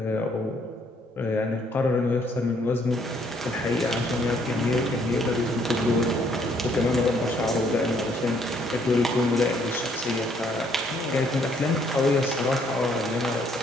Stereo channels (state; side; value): normal; both; correlation 0.67